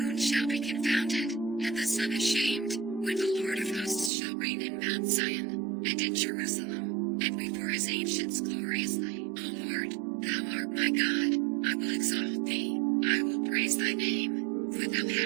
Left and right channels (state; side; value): drops out; left; at 4.1 s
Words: shall be confounded, and the sun ashamed, when the Lord of hosts shall reign in Mount Zion, and in Jerusalem, and before his ancients gloriously. O Lord, thou art my God, I will exalt thee, I will praise thy name, for thou